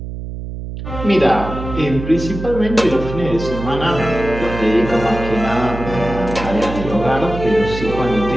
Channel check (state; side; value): noise; right; hum, 8 dB below the sound